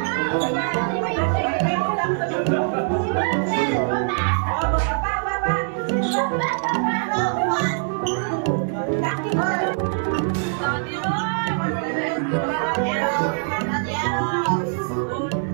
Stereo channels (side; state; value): left; silent; 64 dB below the other